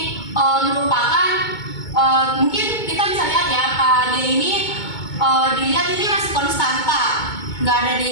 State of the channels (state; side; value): late; right; 2.2 ms